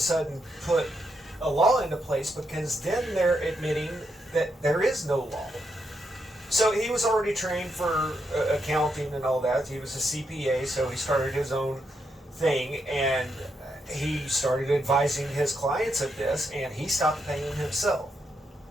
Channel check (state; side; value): normal; both; correlation 0.81